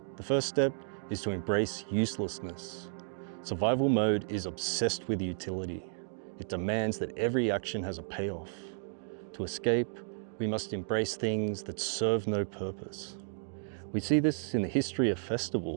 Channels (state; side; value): silent; left; digital silence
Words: The first step is to embrace uselessness. Survival mode is obsessed with utility. It demands that every action has a payoff. To escape, we must embrace things that serve no purpose. We see this in the history of